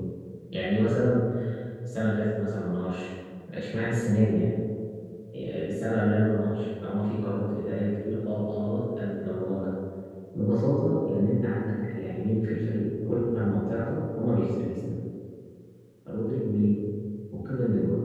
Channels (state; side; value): identical; both; correlation 1.00